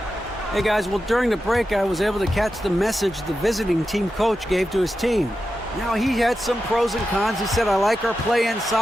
Hey, guys, well, during the break, I was able to catch the message the visiting team coach gave to his team. Now, he had some pros and cons. He said, I like our play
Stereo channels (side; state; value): both; normal; correlation 0.90